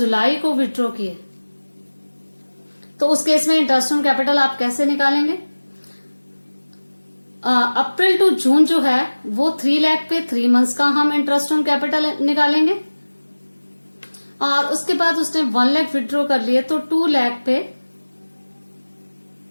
को विड्रॉ किए, तो उस केस में इंटरेस्ट ऑन कैपिटल आप कैसे निकालेंगे? अप्रैल टू जून जो है वो 3 लाख पे 3 मंथ्स का हम इंटरेस्ट ऑन कैपिटल निकालेंगे और उसके बाद उसने 1 लाख विड्रॉ कर लिए तो 2 लाख पे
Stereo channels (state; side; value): inverted; both; correlation -1.00